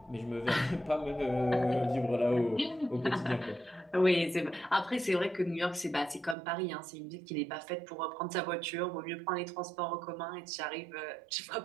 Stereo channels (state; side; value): drops out; left; at 6.4 s